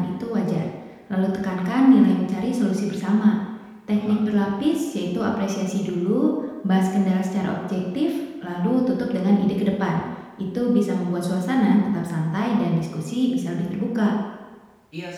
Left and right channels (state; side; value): identical; both; correlation 1.00